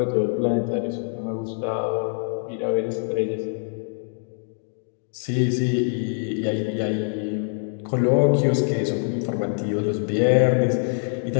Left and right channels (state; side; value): silent; right; 57 dB below the other